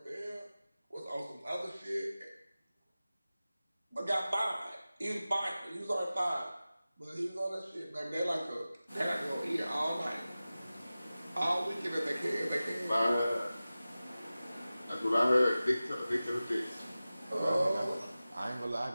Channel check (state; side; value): inverted; both; correlation -0.96